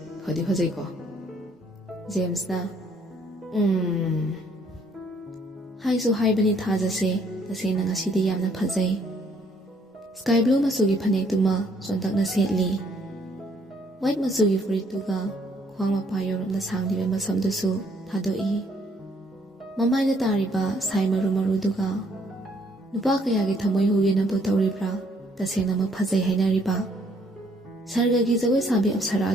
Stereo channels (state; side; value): normal; both; correlation 0.66